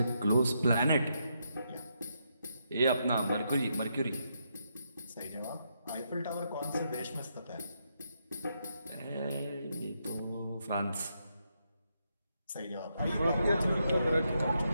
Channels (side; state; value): both; inverted; correlation -0.80